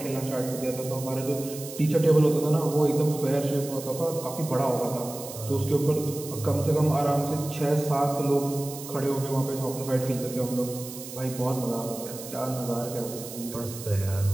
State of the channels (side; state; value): right; noise; hiss, 12 dB below the sound